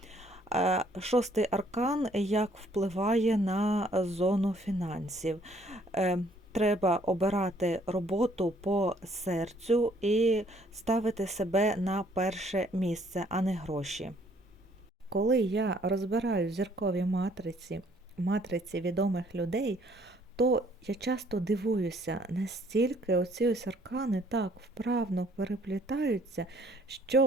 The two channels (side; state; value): both; normal; correlation 0.63